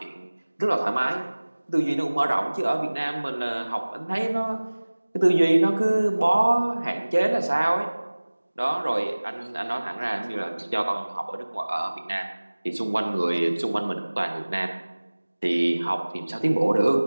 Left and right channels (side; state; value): both; inverted; correlation -1.00